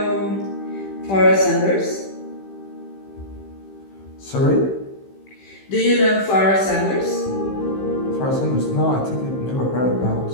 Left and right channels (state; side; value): late; right; 15 ms